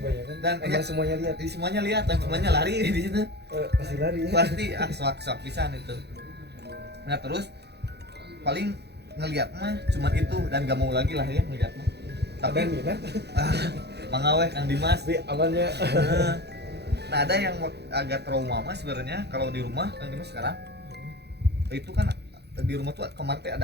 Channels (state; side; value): late; left; 0.48 ms